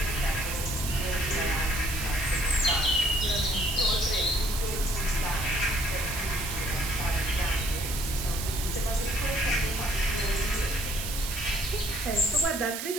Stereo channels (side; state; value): right; noise; hiss, 5 dB below the sound